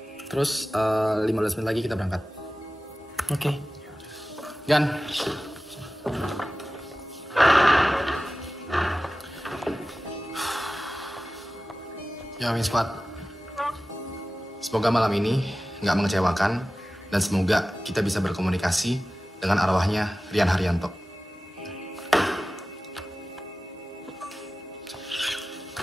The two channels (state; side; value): normal; both; correlation 0.96